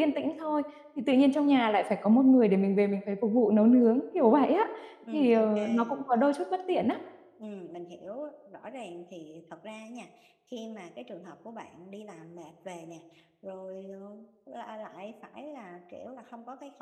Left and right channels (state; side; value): identical; both; correlation 1.00